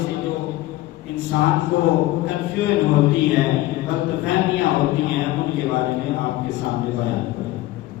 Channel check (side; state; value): right; quieter; 16.7 dB